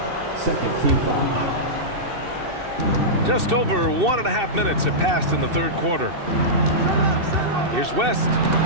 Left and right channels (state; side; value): late; left; 2.7 ms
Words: 2nd team foul. Just over 1.5 minutes have passed in the 3rd quarter. Here's West.